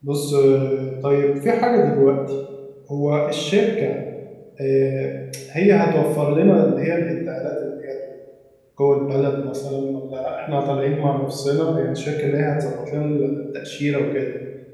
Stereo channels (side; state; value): both; identical; correlation 1.00